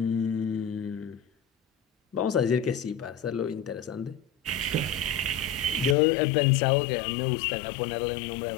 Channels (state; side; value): drops out; right; at 6.0 s